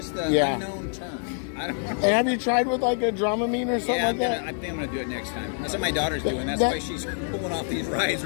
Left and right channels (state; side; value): silent; right; 61 dB below the other